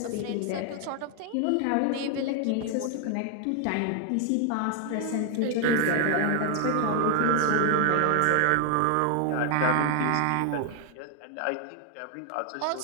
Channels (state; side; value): different; both; correlation 0.00